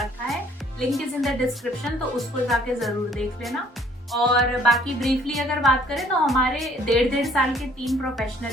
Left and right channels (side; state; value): both; normal; correlation 0.59